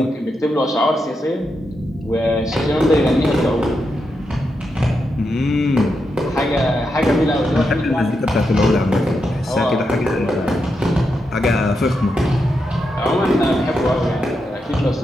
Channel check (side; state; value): both; normal; correlation 0.85